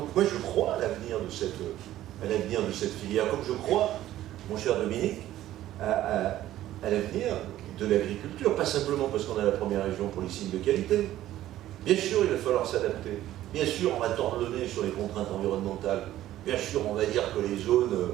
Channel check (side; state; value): left; quieter; 13.7 dB